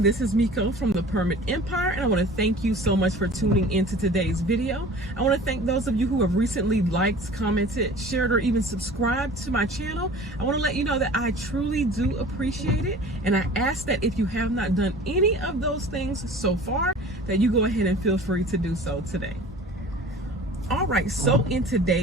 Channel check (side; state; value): both; normal; correlation 0.43